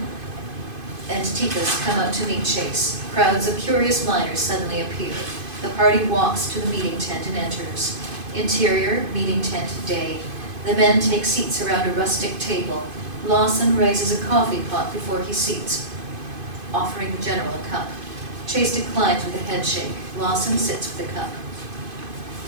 and Tikas come out to meet Chase. Crowds of curious miners suddenly appear. The party walks to the meeting tent and enters. Interior, meeting tent, day. The men take seats around a rustic table. Lawson raises a coffee pot before he seats, offering the general a cup. Chase declines with a head shake. Lawson sits with the cup.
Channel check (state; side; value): late; left; 2.5 ms